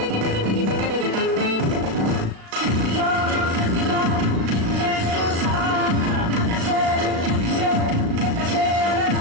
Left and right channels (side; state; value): left; late; 36 ms